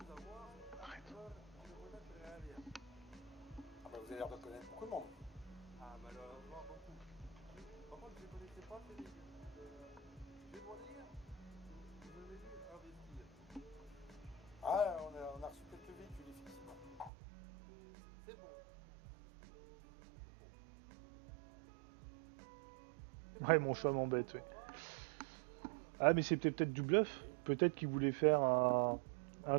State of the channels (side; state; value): left; drops out; at 17.1 s